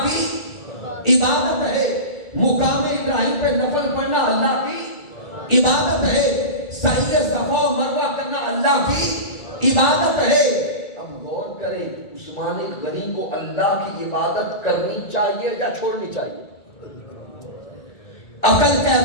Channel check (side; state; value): right; late; 1.4 ms